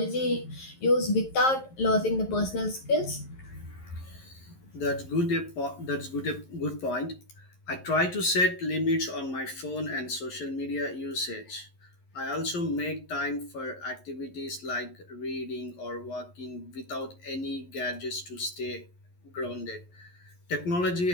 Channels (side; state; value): right; late; 11 ms